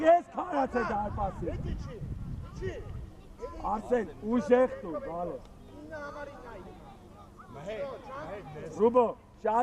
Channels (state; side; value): identical; both; correlation 1.00